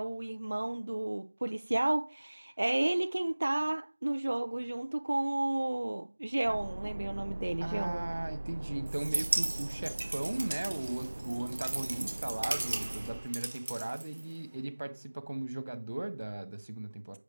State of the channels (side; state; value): both; inverted; correlation -1.00